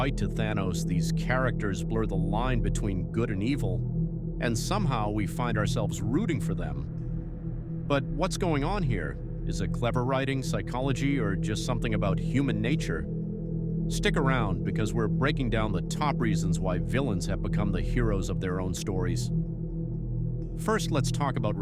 to Thanos, these characters blur the line between good and evil, and somehow we find ourselves rooting for them. But what's going on here? Is it clever writing, psychology, or just something about human nature? Stick around, because we're breaking down the top reasons why villains have become the heroes of their own stories. First, let's talk about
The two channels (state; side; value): identical; both; correlation 1.00